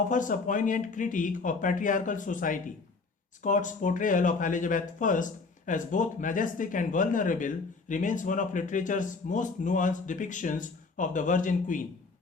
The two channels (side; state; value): right; quieter; 4.2 dB